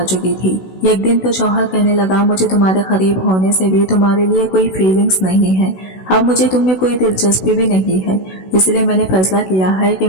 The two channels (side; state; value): right; late; 16 ms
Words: चुकी थी। एक दिन तो शौहर कहने लगा, मुझे तुम्हारे करीब होने से भी तुम्हारे लिए कोई फीलिंग्स नहीं है, अब मुझे तुम में कोई दिलचस्पी भी नहीं है, इसलिए मैंने फैसला किया है कि